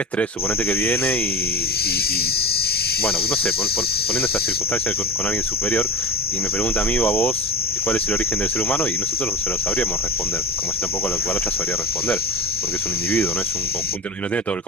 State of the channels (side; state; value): both; normal; correlation 0.23